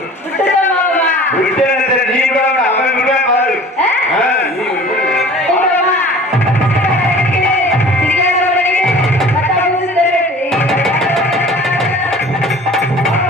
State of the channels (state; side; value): normal; both; correlation 0.45